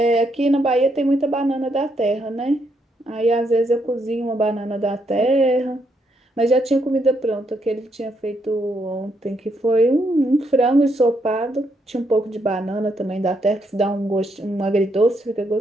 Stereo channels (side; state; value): both; normal; correlation 0.76